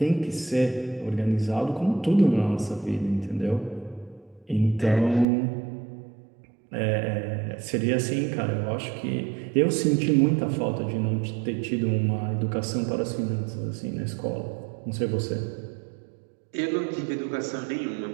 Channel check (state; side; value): drops out; left; at 5.2 s